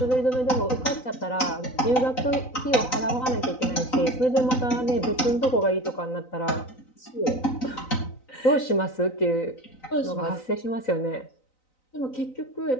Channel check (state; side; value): late; right; 3.9 ms